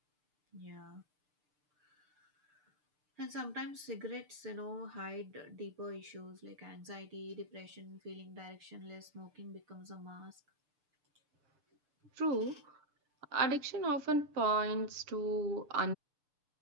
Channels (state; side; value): late; left; 6.8 ms